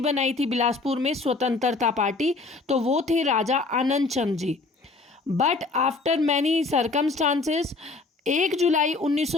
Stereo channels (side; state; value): right; quieter; 3.6 dB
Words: बनाई थी बिलासपुर में, स्वतंत्रता पार्टी, तो वो थे Raja Anand Chand ji. But after many circumstances 1 जुलाई